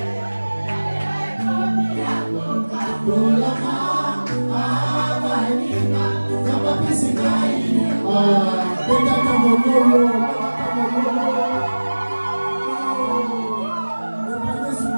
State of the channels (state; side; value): inverted; both; correlation -1.00